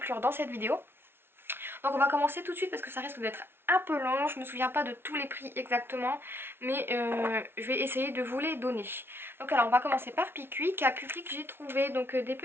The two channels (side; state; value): left; late; 0.11 ms